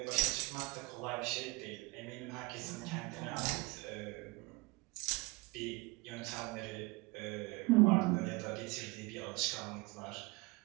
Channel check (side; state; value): left; quieter; 25.2 dB